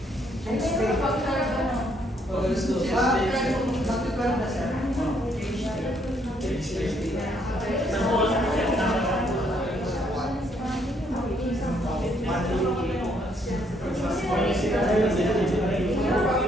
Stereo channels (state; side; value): normal; both; correlation 0.70